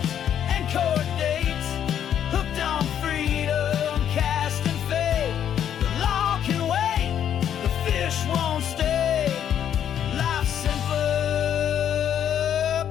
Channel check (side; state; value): right; quieter; 9.5 dB